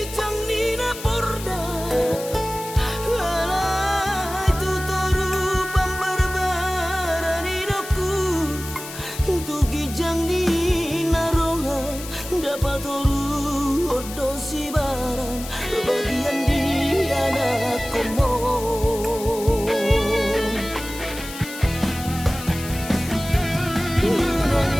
canglina porda alai tutoru pambarbaraninoku tugi canglina roha dapat toru odosi baran bagian di anak komon unang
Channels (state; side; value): noise; left; hiss, 12 dB below the sound